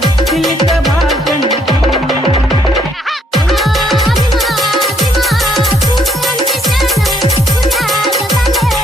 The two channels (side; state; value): both; normal; correlation 0.69